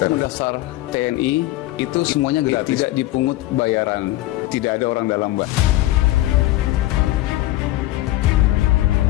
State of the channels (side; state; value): right; quieter; 16.5 dB